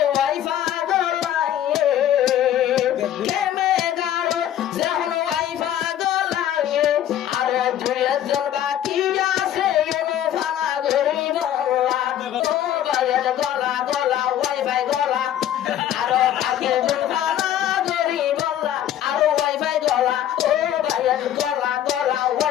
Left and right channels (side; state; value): right; quieter; 11.2 dB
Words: ওয়াইফা গলাইয়ে কেমে গারো যখন ওয়াইফা গলাইয়ে আর দুইজন বাকি আছে এনে ফানা ঘুরি বলা ও ভাইয়ের গলা গলা ওয়াইফাই গলা আরো বাকি জন ফানা ঘুরি বলা আরো ওয়াইফাই গলা ও ভাইয়ের গলা গলা